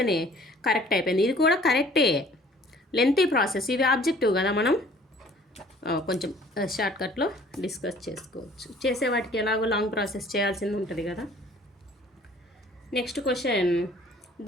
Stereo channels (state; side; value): normal; both; correlation 0.54